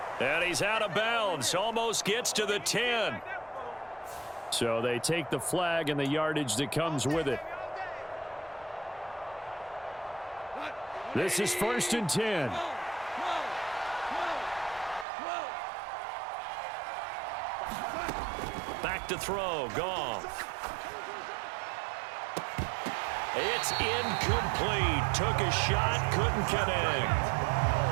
And he's out of bounds. Almost gets to the 10. So they take the flag and the yardage that comes with it. This is 1st and 10. Back to throw. Goff. It's incomplete. Took a shot, couldn't connect.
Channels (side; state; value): left; drops out; at 15.1 s